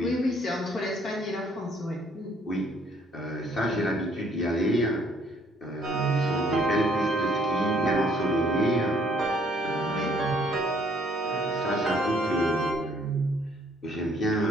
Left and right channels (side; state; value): both; normal; correlation 0.63